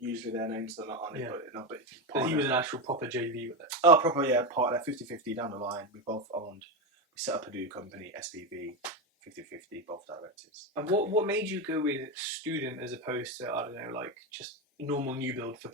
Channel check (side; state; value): both; normal; correlation 0.13